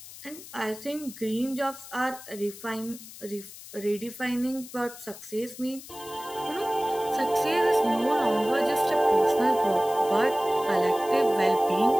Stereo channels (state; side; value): noise; left; hiss, 16 dB below the sound